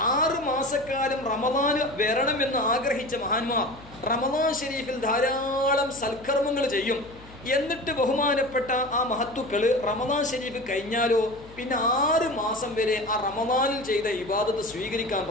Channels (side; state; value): left; noise; hum, 21 dB below the sound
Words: 6 മാസക്കാലം റമദാന് വരണമെന്ന് ആഗ്രഹിച്ച മഹാന്മാർ റമദാൻ ഷരീഫിൽ ധാരാളം സൽക്കർമ്മങ്ങൾ ചെയ്യും. എന്നിട്ട് ബഹുമാനപ്പെട്ട ആ മഹത്തുക്കൾ റമദാൻ ശരീഫ് കഴിഞ്ഞാലോ പിന്നെ 6 മാസം വരെ ആ റമദാനിൽ ചെയ്ത ഇബാദത്ത് സ്വീകരിക്കാൻ